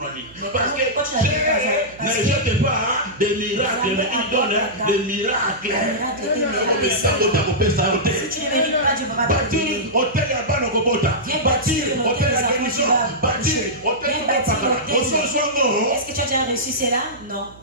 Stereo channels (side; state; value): right; noise; hum, 23 dB below the sound